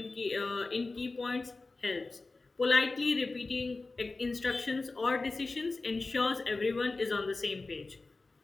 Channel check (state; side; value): quieter; right; 3.6 dB